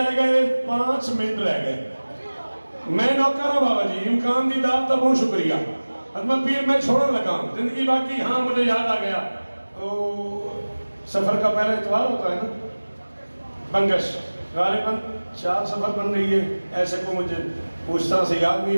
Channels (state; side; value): inverted; both; correlation -1.00